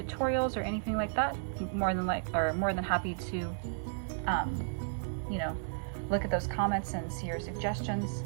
or anything like that, more than happy to, you know, look at those comments and see your suggestions.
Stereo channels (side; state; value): left; silent; digital silence